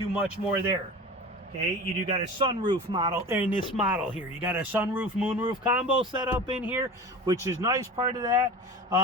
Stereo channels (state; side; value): normal; both; correlation 0.34